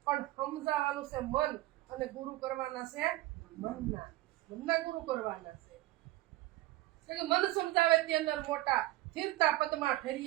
પણ સમજાવવાનું છે મન, અને ગુરુ કરવાના છે મનના ગુરુ કરવાના છે. કે મન સમજાવે તે અંદર મોટા, સ્થિરતા પદમાં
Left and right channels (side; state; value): left; quieter; 17.5 dB